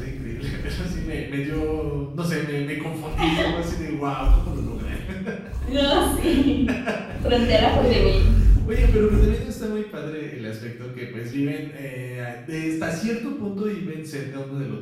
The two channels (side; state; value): both; identical; correlation 1.00